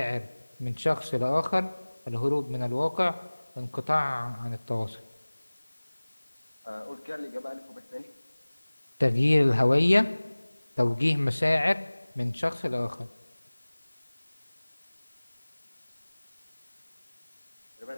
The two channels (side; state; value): both; inverted; correlation -1.00